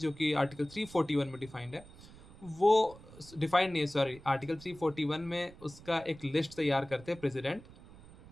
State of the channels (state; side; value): noise; right; rumble, 20 dB below the sound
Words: कि आर्टिकल 341 में डिफाइंड है, वो डिफाइंड नहीं है, सॉरी, आर्टिकल 341 में उसका एक लिस्ट तैयार करते हैं प्रेसिडेंट।